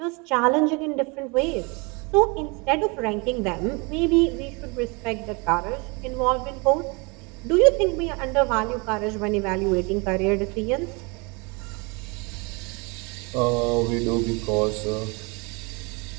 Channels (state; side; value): quieter; left; 29.6 dB